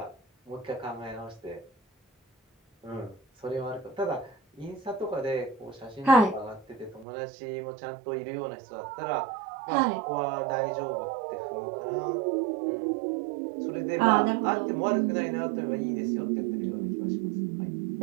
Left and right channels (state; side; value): drops out; left; at 7.1 s